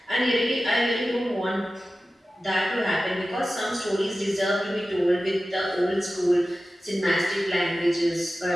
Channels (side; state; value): both; normal; correlation 0.95